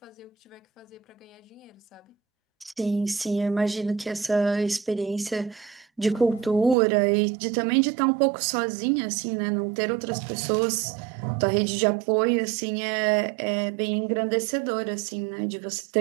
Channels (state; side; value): drops out; left; at 6.8 s